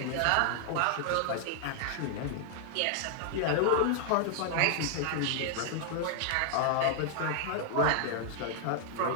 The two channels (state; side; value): different; both; correlation 0.00